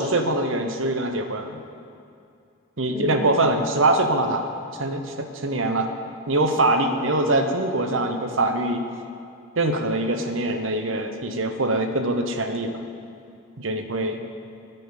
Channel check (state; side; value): normal; both; correlation -0.15